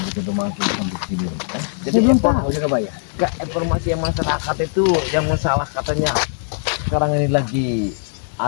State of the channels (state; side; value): silent; right; digital silence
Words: kita udah masuk sampai sini? Jadi belum tahu Jagabaya. Gak informasi yang masyarakat itu yang masalah katanya sekarang ini lagi